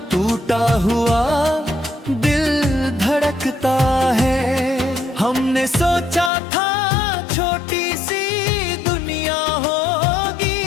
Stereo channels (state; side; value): drops out; right; at 6.3 s